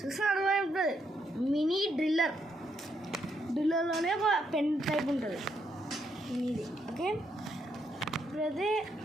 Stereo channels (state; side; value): normal; both; correlation 0.77